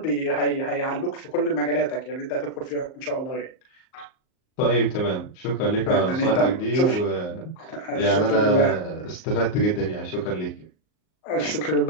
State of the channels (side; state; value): right; late; 38 ms